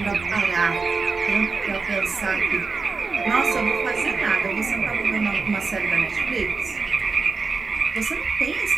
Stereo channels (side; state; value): left; quieter; 4.4 dB